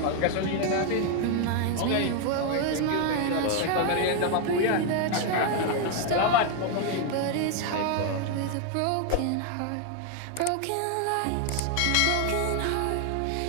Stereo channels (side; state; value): both; different; correlation 0.01